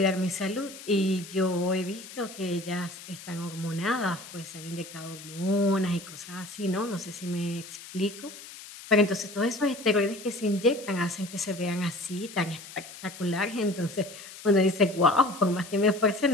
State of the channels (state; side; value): noise; left; hiss, 15 dB below the sound